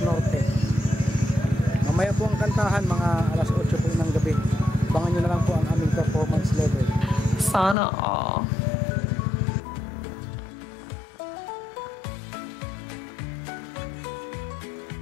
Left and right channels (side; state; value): right; drops out; at 7.8 s